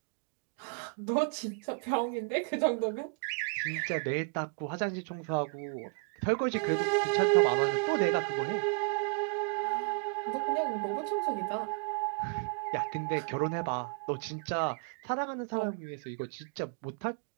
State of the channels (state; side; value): quieter; left; 40.0 dB